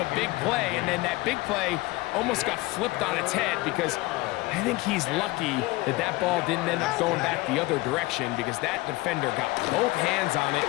big play, and then that big play almost got flipped on its head because I think he's lucky that that ball didn't end up going back the other direction because that defender got both hands on it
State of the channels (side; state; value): right; quieter; 21.0 dB